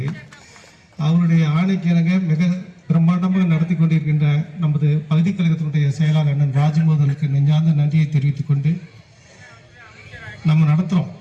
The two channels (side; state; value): both; identical; correlation 1.00